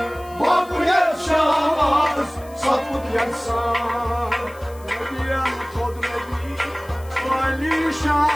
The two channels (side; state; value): left; noise; hiss, 23 dB below the sound